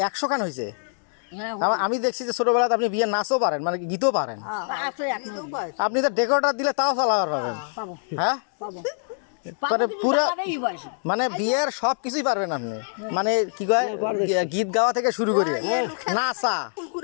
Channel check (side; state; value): right; silent; 62 dB below the other